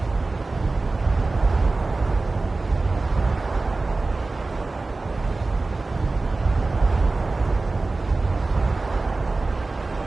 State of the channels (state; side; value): quieter; left; 3.4 dB